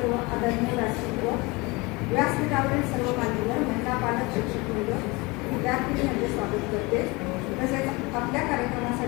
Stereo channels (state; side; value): quieter; right; 25.0 dB